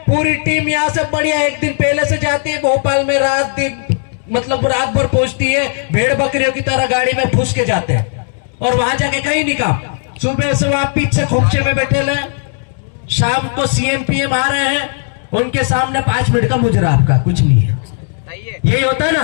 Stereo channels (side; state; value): right; silent; 70 dB below the other